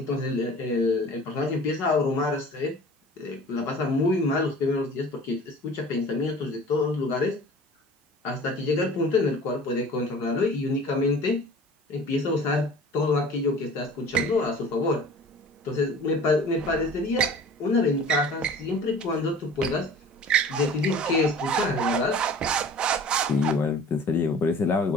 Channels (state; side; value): normal; both; correlation 0.44